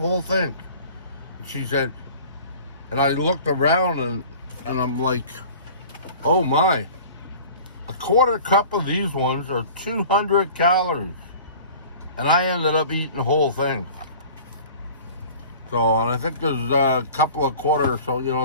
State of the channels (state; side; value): inverted; both; correlation -0.43